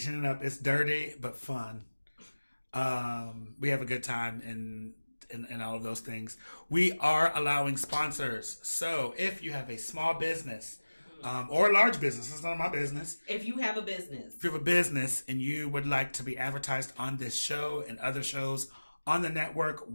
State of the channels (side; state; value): both; inverted; correlation -1.00